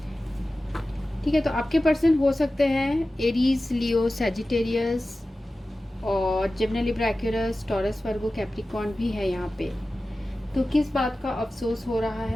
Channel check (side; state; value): both; normal; correlation 0.95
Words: ठीक है, तो आपके पर्सन हो सकते हैं एरीज, लियो, सैजिटेरियस और जेमिनी, लिब्रा, एक्वेरियस, टॉरस, वर्गो, कैप्रिकॉर्न भी है यहाँ पे। तो किस बात का अफसोस हो रहा